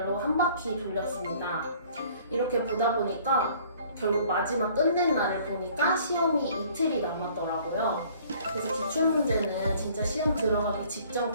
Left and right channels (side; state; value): both; inverted; correlation -0.55